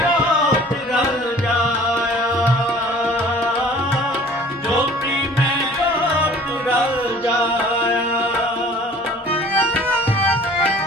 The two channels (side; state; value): both; normal; correlation 0.49